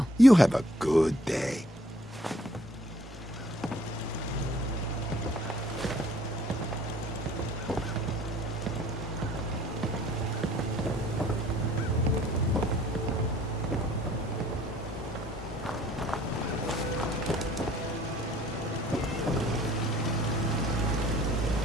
You have a good day.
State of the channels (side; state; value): both; normal; correlation 0.59